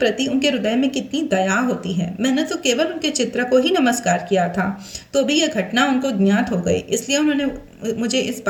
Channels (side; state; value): both; identical; correlation 1.00